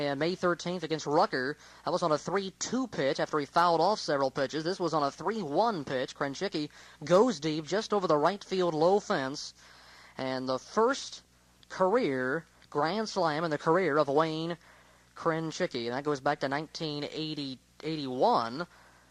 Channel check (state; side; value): identical; both; correlation 1.00